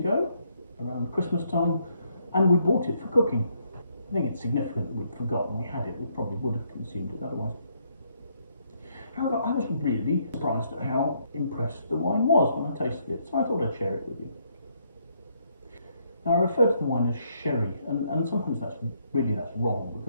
around Christmas time, and we bought it for cooking. I think it's significant that we'd forgotten we had it. We probably would have consumed it otherwise. However, I was really surprised at how impressed the wine was when I tasted it, so I thought I'd share it with you. Now, I refer to the wine as sherry, and sometimes that's wrong,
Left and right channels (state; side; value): inverted; both; correlation -0.72